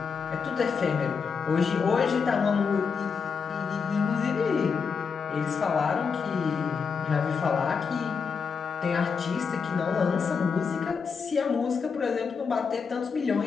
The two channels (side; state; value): right; quieter; 5.7 dB